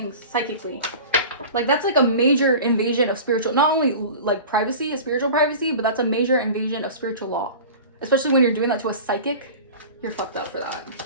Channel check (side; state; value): both; inverted; correlation -0.37